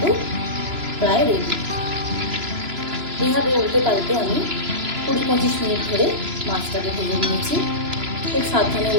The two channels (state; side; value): late; left; 2.9 ms